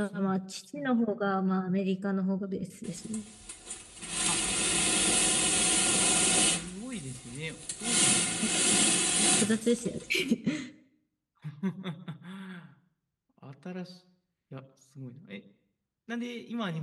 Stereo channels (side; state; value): both; identical; correlation 1.00